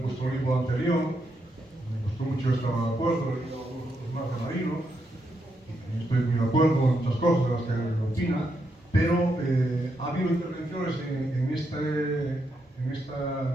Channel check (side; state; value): both; normal; correlation 0.81